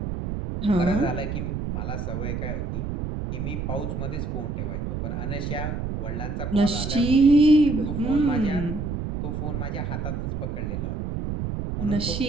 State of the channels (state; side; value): noise; right; rumble, 3 dB below the sound